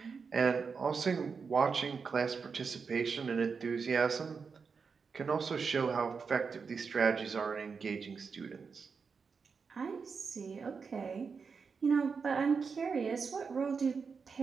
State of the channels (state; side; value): quieter; left; 5.4 dB